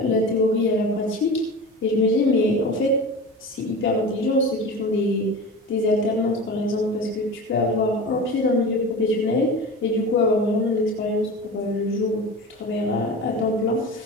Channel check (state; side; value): normal; both; correlation 0.31